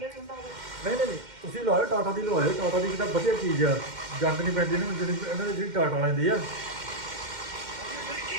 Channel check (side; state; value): left; late; 2.1 ms